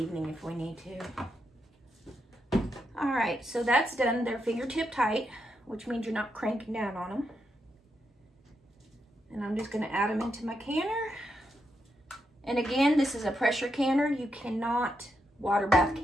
if we need to. All right, so that's done. They're fingertip tight, which means you're not cranking down on them. And I'm just gonna add them into my canner. And again, this is a pressure canner. You cannot water bath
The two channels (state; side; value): normal; both; correlation 0.83